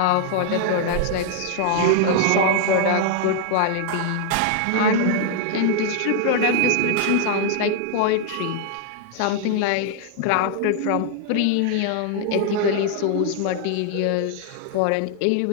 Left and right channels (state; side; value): different; both; correlation 0.00